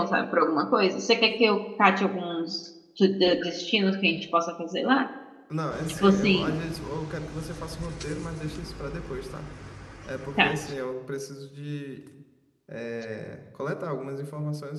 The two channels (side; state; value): both; identical; correlation 1.00